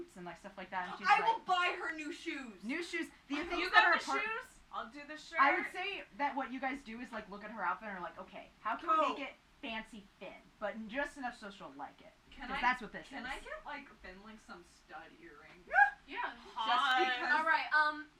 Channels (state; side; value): identical; both; correlation 1.00